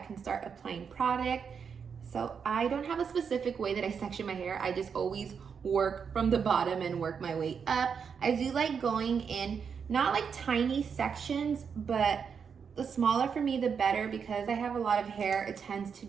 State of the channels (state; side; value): quieter; left; 6.5 dB